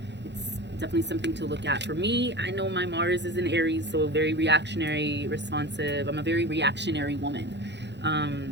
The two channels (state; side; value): late; left; 0.51 ms